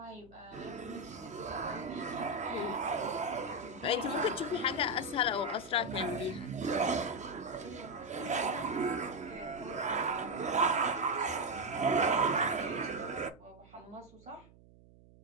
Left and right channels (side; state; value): right; noise; hum, 24 dB below the sound